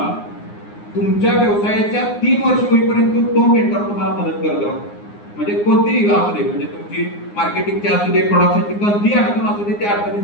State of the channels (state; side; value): late; right; 9.7 ms